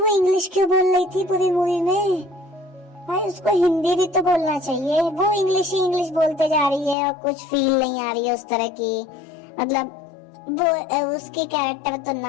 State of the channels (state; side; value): drops out; right; at 7.0 s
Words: इंग्लिश क्यों बोल रही थी पूरी मूवी में? भाई उसको हिंदी भी तो बोलना चाहिए। वो इंग्लिश ही इंग्लिश बोलते जा रही है और कुछ फील नहीं आ रही है उस तरह की। मतलब वो उसकी कैरेक्टर तो